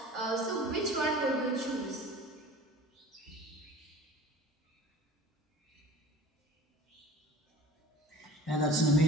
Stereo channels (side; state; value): both; normal; correlation 0.42